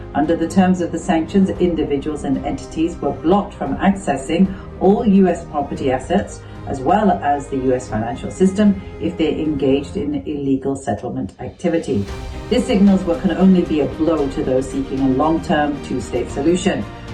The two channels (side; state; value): both; identical; correlation 1.00